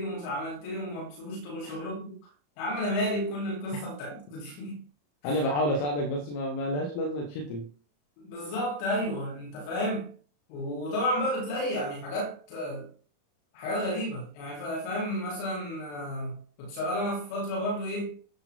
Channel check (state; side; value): late; right; 34 ms